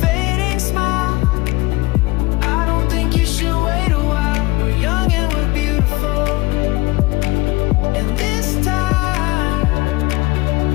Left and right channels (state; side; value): quieter; right; 21.9 dB